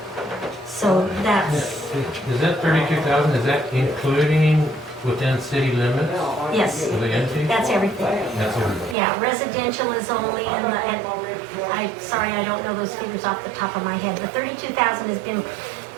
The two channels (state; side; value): drops out; left; at 9.0 s